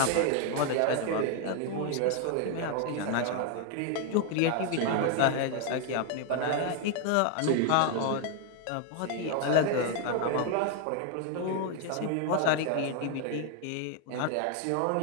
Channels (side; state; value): both; different; correlation 0.01